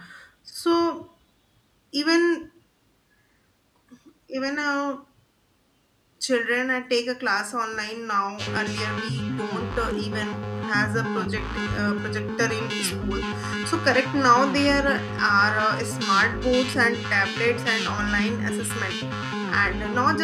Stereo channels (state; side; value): identical; both; correlation 1.00